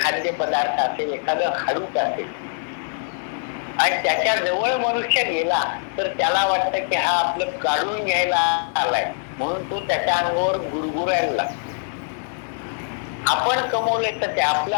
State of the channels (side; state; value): right; silent; 64 dB below the other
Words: असेल, एखादं हाडूक असेल आणि त्याच्या जवळ मनुष्य गेला तर त्याला वाटतं की हा आपलं काढून घ्यायला आलाय म्हणून तो त्याच्या अंगावर गुरगुरायला लागतो. आपण कमवले तर ते आपलं